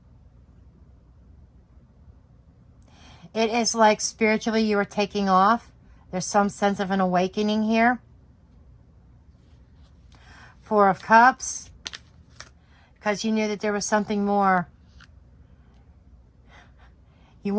It is like spiritually you are taking off. There's some sense of an awakening here. Four of Cups. Because you knew that there was something more. You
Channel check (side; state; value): both; identical; correlation 1.00